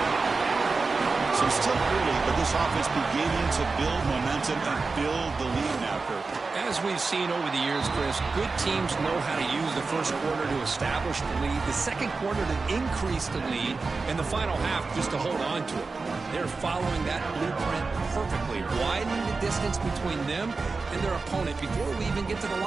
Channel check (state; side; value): quieter; left; 4.1 dB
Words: So still early, but this offense beginning to build momentum and build the lead now, Kurt. As we've seen over the years, Chris, good teams know how to use the first quarter to establish the lead, the second quarter to increase the lead, and the final half just to hold on to it. They're following that blueprint perfectly, widening the distance between them and their opponent before we even get to the